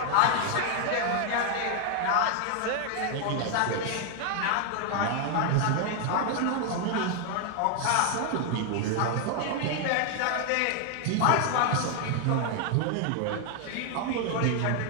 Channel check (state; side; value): different; both; correlation 0.00